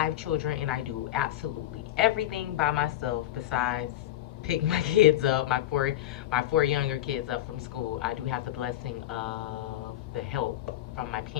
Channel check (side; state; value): right; quieter; 13.5 dB